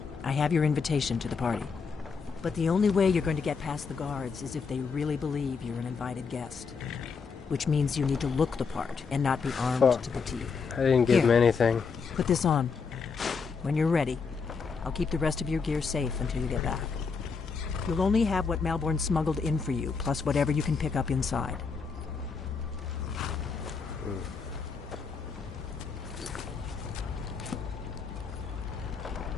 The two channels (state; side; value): quieter; right; 5.3 dB